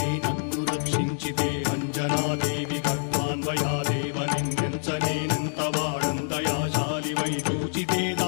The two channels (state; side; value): silent; right; digital silence